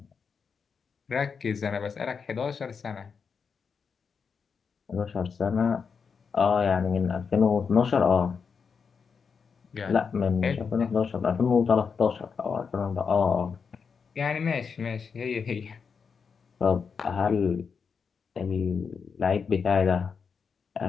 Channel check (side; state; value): right; quieter; 5.9 dB